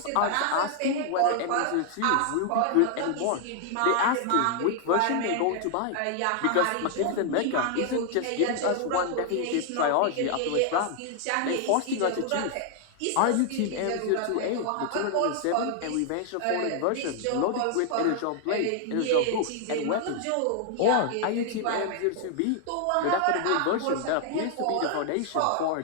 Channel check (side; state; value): both; different; correlation 0.00